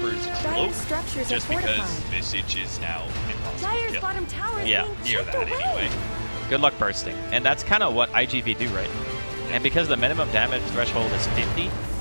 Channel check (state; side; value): inverted; both; correlation -1.00